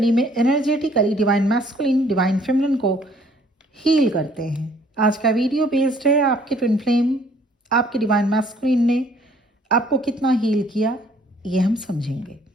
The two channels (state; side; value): normal; both; correlation 0.60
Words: में energetically divine masculine, divine feminine को हील करते हैं। आज का वीडियो बेस्ड है आपके ट्विन फ्लेम, आपके डिवाइन मैस्कुलिन ने आपको कितना हील किया, ये हम समझेंगे।